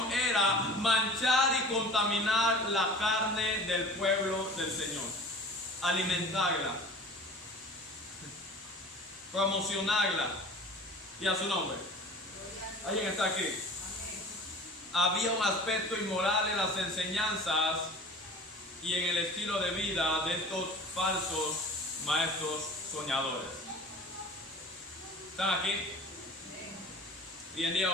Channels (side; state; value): both; normal; correlation 0.41